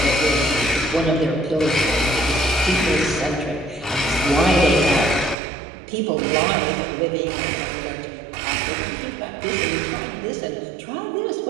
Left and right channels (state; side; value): drops out; left; at 5.4 s